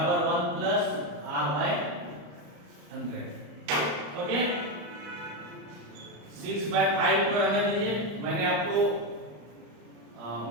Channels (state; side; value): late; left; 34 ms